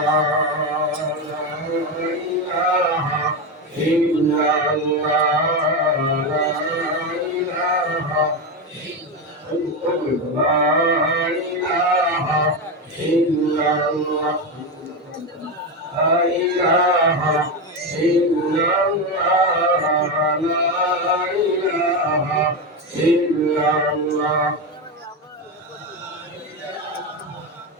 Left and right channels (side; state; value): both; normal; correlation 0.13